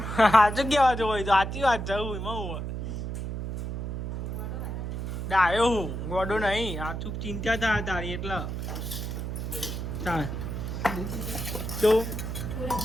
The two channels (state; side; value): noise; right; hum, 4 dB below the sound